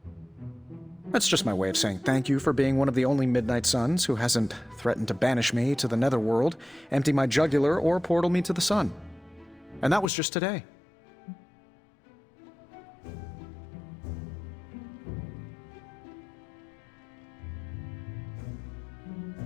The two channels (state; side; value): drops out; right; at 10.1 s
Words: That's just my way of saying thank you for being one of the only Midnight Suns who hasn't threatened to banish me to the Netherworld, empty my jugular, or portal me to the sun. And that was just today.